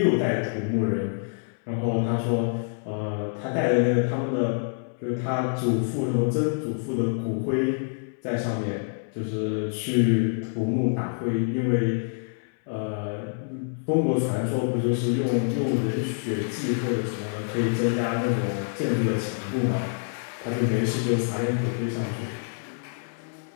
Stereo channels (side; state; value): right; silent; digital silence